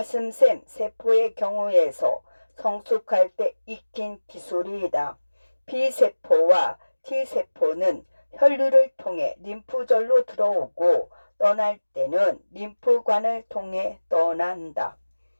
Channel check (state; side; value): inverted; both; correlation -1.00